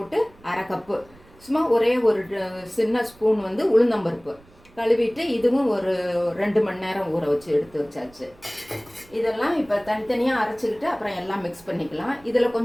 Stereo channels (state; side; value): noise; right; rumble, 27 dB below the sound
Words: அரை கப்பு, சும்மா ஒரே ஒரு சின்ன ஸ்பூன் உளுந்தம்பருப்பு கழுவிட்டு இதுவும் ஒரு 2 மணி நேரம் ஊற வச்சு எடுத்து வச்சாச்சு. இதெல்லாம் இப்போ தனித்தனியாக அரைச்சிக்கிட்டு அப்புறம் எல்லாம் மிக்ஸ் பண்ணிக்கலாம். இதில்